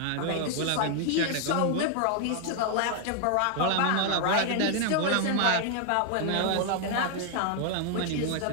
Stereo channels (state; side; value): different; both; correlation 0.00